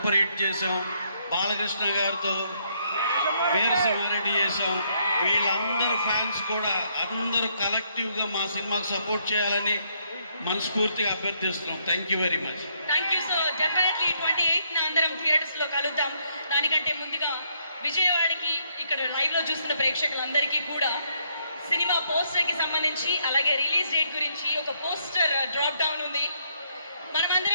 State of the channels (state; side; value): inverted; both; correlation -0.72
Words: హిట్ చేశాం. బాలకృష్ణ గారితో వీరసింహారెడ్డి చేశాం. వీళ్ళందరూ ఫ్యాన్స్ కూడా అందరూ కలెక్టివ్గా మా సినిమాకు సపోర్ట్ చేయాలని మనస్ఫూర్తిగా అభ్యర్థిస్తున్నాం. Thank you very much. Thank you. So definitely 28న అందరం థియేటర్స్ లో కలుద్దాం. దానికంటే ముందుగా విజయవాడకి ఇక్కడ లైవ్ లో చూస్తున్న ప్రేక్షకులందరికీ కూడా సినిమా పోస్టర్ కి సంబంధించి అలాగే రిలీజ్ డేట్ గురించి ఒక పోస్టర్ డ్రాప్ డౌన్ ఉంది.